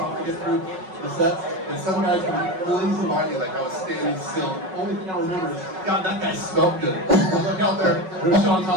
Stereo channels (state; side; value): late; left; 5.4 ms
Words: to get through the sets, and some guys come really easy by me like I was standing still. Only thing I remember is, God, that guy smelled good. I look out there, there's Shaun